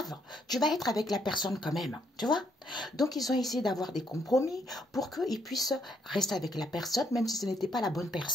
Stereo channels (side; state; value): both; normal; correlation 0.73